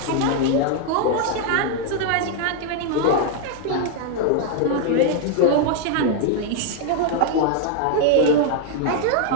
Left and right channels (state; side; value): different; both; correlation 0.00